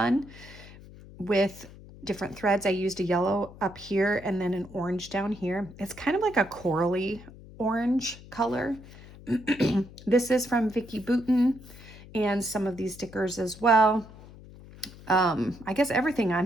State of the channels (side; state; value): left; noise; hum, 19 dB below the sound